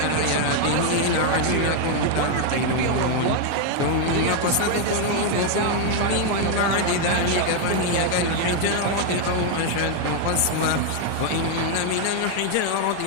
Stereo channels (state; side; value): different; both; correlation 0.00